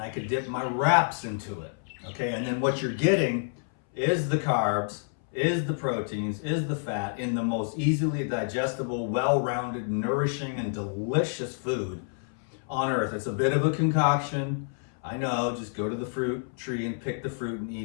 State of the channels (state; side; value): silent; right; 59 dB below the other